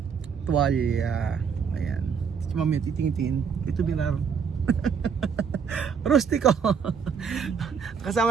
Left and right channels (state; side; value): quieter; left; 6.5 dB